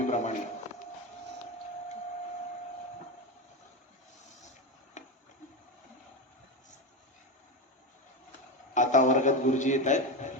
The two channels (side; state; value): both; normal; correlation 0.17